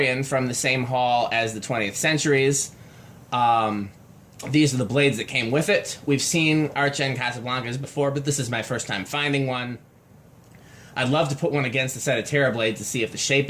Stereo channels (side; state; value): both; identical; correlation 1.00